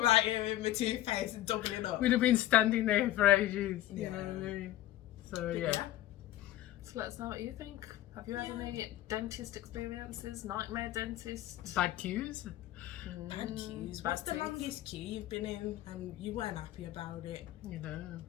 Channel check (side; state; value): right; quieter; 14.1 dB